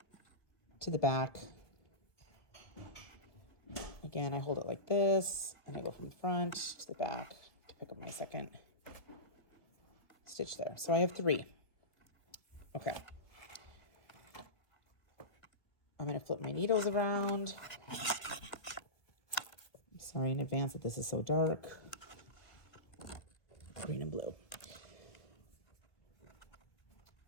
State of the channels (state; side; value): late; right; 1.8 ms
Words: to the back. Again, I hold it like this, and I go from the front to the back to pick up my second stitch there. So I have 3. Okay. I'm going to flip my needles around. I'm sorry in advance that this is so dark. Green and blue.